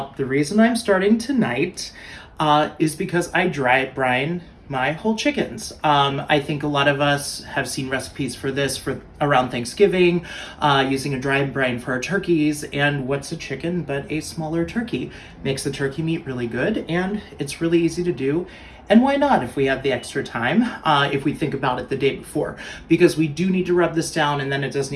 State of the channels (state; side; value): identical; both; correlation 1.00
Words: The reason I'm starting tonight is because I dry brine my whole chickens. I think a lot of us have seen recipes for this for around Thanksgiving, using a dry brine for our turkeys. And what's a chicken but a smaller turkey? Makes the turkey meat really good, and it's really easy to do. And why not if we have the extra time, if we think about it the day before? Because we do need to rub this down, and then it does